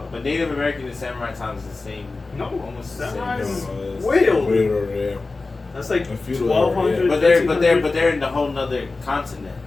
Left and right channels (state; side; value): quieter; right; 3.6 dB